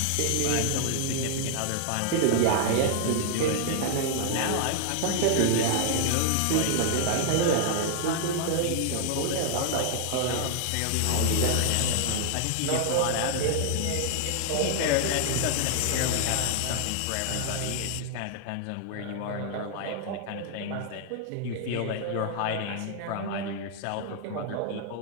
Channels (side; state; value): both; different; correlation 0.00